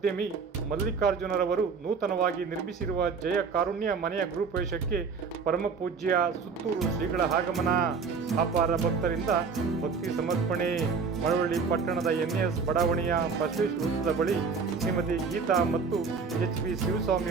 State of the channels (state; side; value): quieter; left; 5.3 dB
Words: ಮಲ್ಲಿಕಾರ್ಜುನರವರು ನೂತನವಾಗಿ ನಿರ್ಮಿಸಿರುವ ಜಯ ಕಾರುಣ್ಯ ಮನೆಯ ಗೃಹಪ್ರವೇಶಕ್ಕೆ ಪರಮಪೂಜ್ಯ ಸುತ್ತೂರು ಶ್ರೀಗಳ ಆಗಮನ. ಅಪಾರ ಭಕ್ತರಿಂದ ಭಕ್ತಿ ಸಮರ್ಪಣೆ. ಮಳವಳ್ಳಿ ಪಟ್ಟಣದ NS ಬಡಾವಣೆಯ ಬಸವೇಶ್ವರ ವೃತ್ತದ ಬಳಿ ಶ್ರೀಮತಿ ಗೀತಾ ಮತ್ತು HP